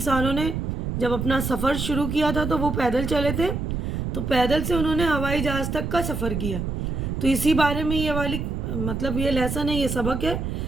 نے جب اپنا سفر شروع کیا تھا تو وہ پیدل چلے تھے، تو پیدل سے انہوں نے ہوائی جہاز تک کا سفر کیا۔ تو اسی بارے میں یہ والی یہ لیسن ہے، یہ سبق ہے۔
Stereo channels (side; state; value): right; noise; rumble, 3 dB below the sound